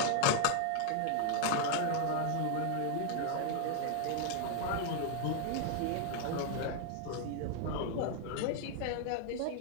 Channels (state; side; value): different; both; correlation 0.00